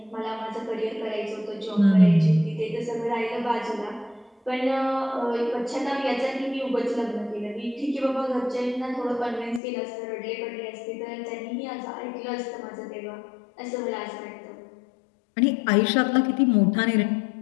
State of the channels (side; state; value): right; drops out; at 9.6 s